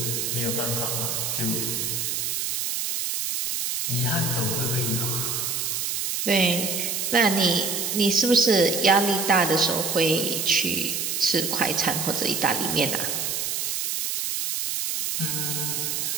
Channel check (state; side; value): noise; right; hiss, 1 dB below the sound